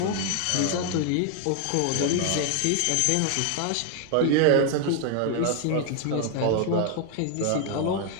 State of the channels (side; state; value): both; different; correlation 0.00